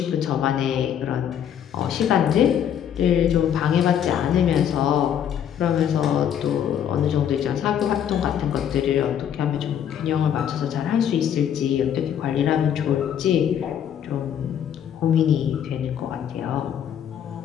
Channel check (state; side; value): quieter; right; 9.3 dB